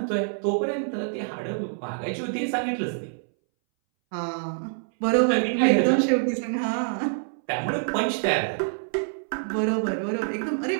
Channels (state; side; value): silent; left; 61 dB below the other